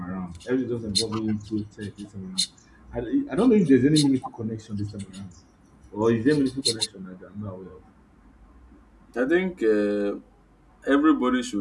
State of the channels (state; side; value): identical; both; correlation 1.00